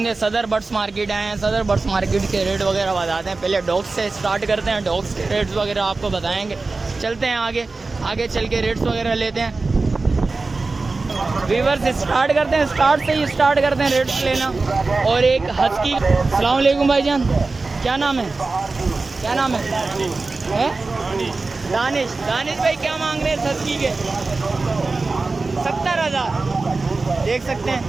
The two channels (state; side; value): quieter; left; 3.7 dB